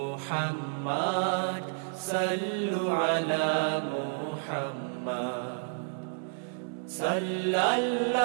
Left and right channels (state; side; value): silent; left; 58 dB below the other